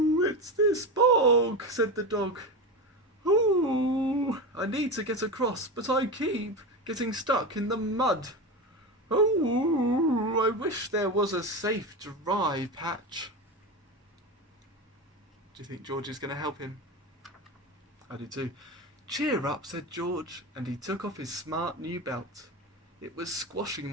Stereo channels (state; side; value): normal; both; correlation 0.21